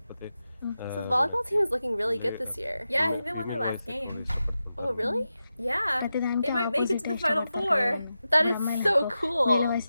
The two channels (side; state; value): both; inverted; correlation -0.91